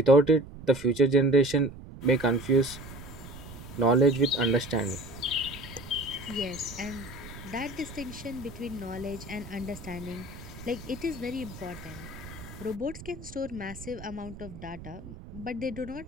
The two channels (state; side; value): noise; right; rumble, 14 dB below the sound